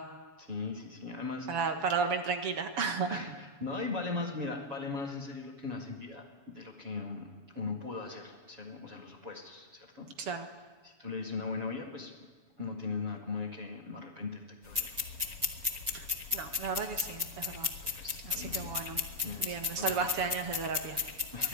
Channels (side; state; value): left; late; 7.1 ms